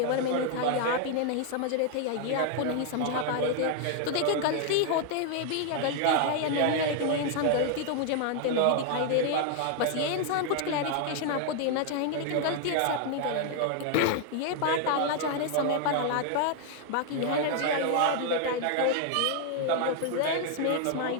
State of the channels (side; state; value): both; different; correlation 0.00